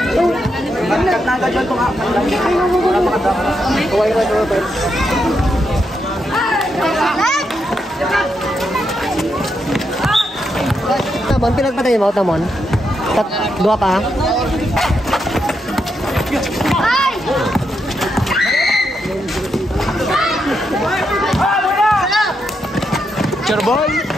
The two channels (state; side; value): normal; both; correlation 0.82